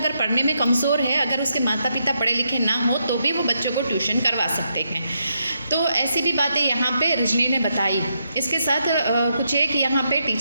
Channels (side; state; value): both; inverted; correlation -0.80